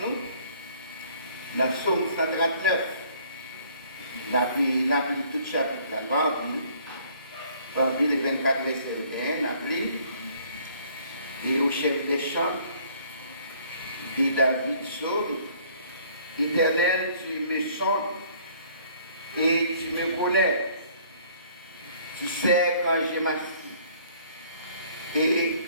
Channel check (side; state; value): both; inverted; correlation -0.58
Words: Dans Psaume 139, nous avons lu tout le chapitre, nous avons lu les 24 versets, nous avons lu, et au chef des chants de David Psaume, Éternel, tu me sondes et tu me connais. Tu sais quand je m'assieds et